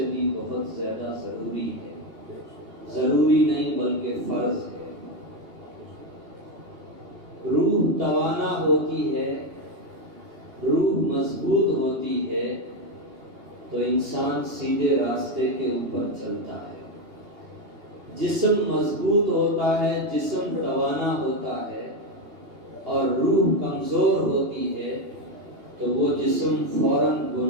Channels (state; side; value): late; left; 2.8 ms